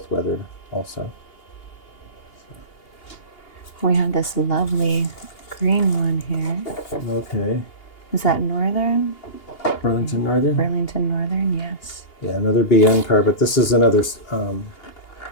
weathered also. We have this lovely green one here. Okay. Is that Northern? Burlington Northern? Burlington Northern, yes. Yeah, another BN car, but this is another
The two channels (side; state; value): right; late; 2.8 ms